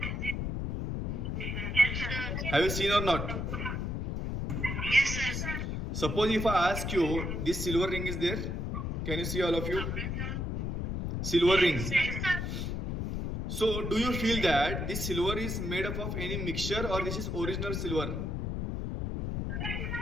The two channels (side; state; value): left; noise; rumble, 2 dB below the sound